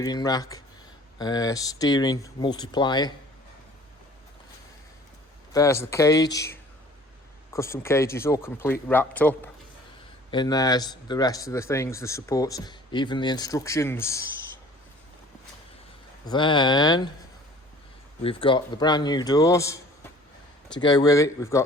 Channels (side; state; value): both; normal; correlation 0.50